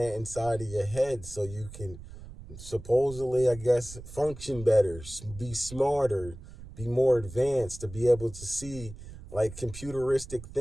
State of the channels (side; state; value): right; noise; rumble, 15 dB below the sound